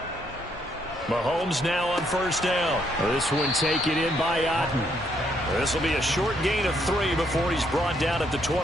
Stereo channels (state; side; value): normal; both; correlation 0.72